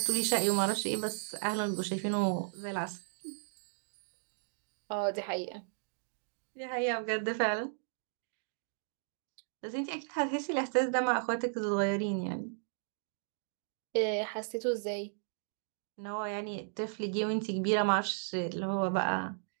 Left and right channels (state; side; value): silent; left; digital silence